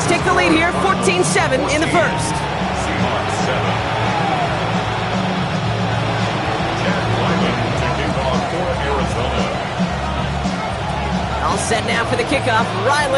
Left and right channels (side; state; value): both; identical; correlation 1.00